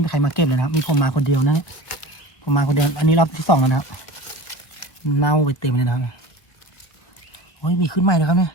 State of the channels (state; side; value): late; right; 1.8 ms